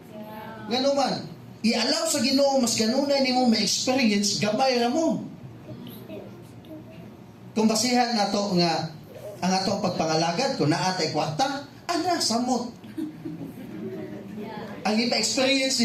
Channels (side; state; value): both; identical; correlation 1.00